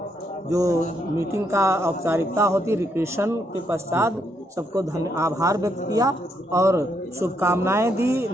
जो मीटिंग का औपचारिकता होती रिक्रेशन के पश्चात सबको आभार व्यक्त किया और शुभकामनाएं दी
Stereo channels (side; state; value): both; normal; correlation 0.76